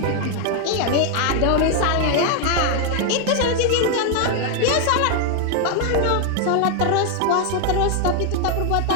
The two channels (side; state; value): both; different; correlation 0.01